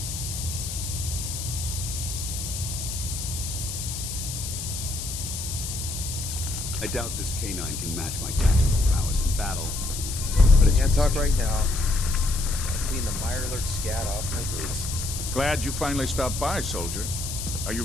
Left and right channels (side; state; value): left; noise; hiss, 6 dB below the sound